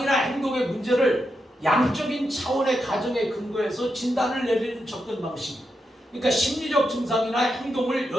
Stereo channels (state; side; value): normal; both; correlation 0.85